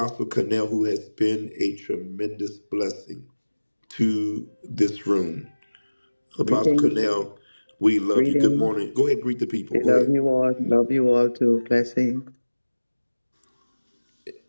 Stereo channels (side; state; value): both; inverted; correlation -1.00